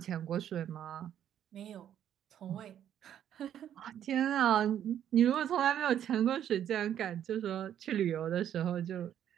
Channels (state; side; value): quieter; left; 10.2 dB